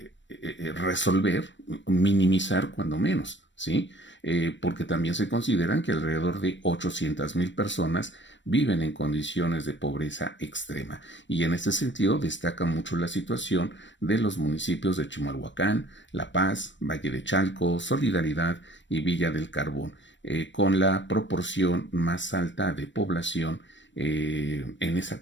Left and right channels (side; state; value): right; late; 0.53 ms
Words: resolver, minimizar cuando menos, ¿sí? Porque también se consideran que alrededor de 800,000 personas viven en condiciones de pobreza extrema. Y en este sentido destaca mucho la situación de los municipios de Chimalhuacán, La Paz, Valle de Chalco, Solidaridad y Villa del Carbón, con la proporción más alta de población en esa